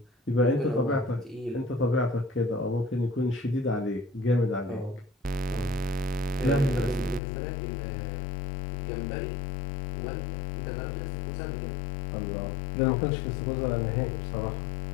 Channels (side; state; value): right; drops out; at 7.2 s